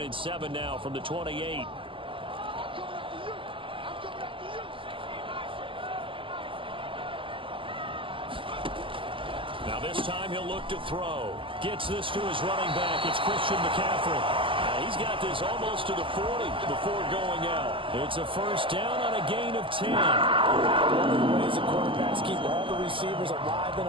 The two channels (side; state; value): left; late; 0.25 ms